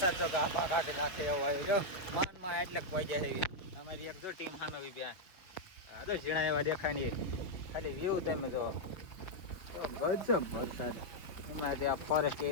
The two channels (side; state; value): right; late; 5.3 ms